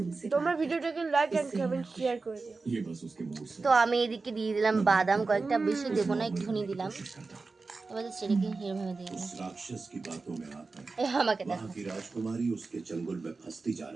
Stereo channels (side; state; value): left; quieter; 4.0 dB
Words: তোমরা बात ভিডিওটাকে লাইক এন্ড इससे কমেন্ট मैं শেয়ার করে দিও। ये बस उसके मूड से তো আমি এদিকে দিয়ে দিলাম বাদাম কয়েকটা, বেশি দেবো না, একটুখানি দিলাম। कोशिश करता हूँ। এবার সেটাকে এরভাবে দিয়ে দিলাম। उस राक्षस की बातों में आकर আমাকে দেখো। वहाँ की राजकुमारी उसके चंगुल में फंसती जा